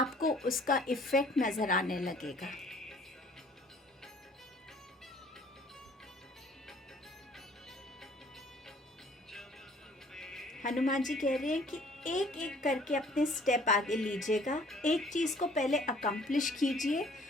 उसका इफ़ेक्ट नज़र आने लगेगा। हनुमान जी कह रहे हैं कि एक एक करके अपने स्टेप आगे लीजिएगा, एक चीज़ को पहले अकम्प्लिश कीजिए,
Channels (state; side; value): normal; both; correlation 0.56